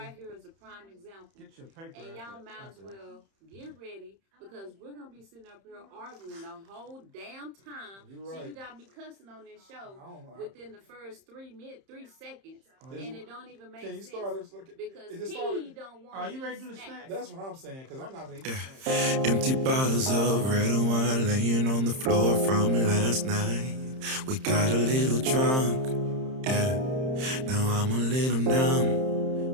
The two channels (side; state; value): left; late; 31 ms